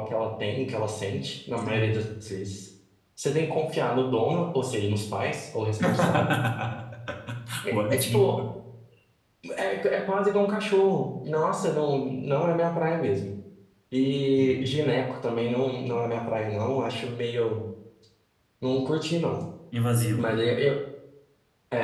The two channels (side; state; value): both; identical; correlation 1.00